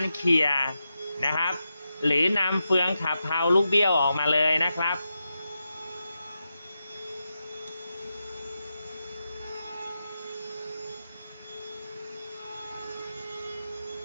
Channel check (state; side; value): inverted; both; correlation -0.89